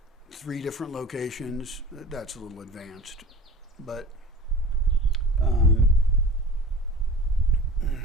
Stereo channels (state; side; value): normal; both; correlation 0.39